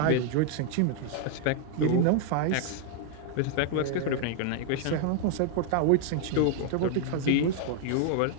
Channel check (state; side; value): different; both; correlation 0.00